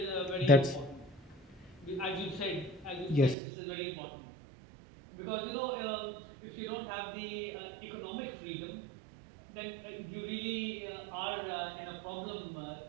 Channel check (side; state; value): left; drops out; at 3.4 s